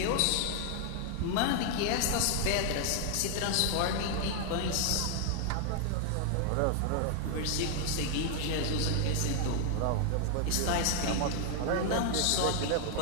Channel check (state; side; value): different; both; correlation 0.00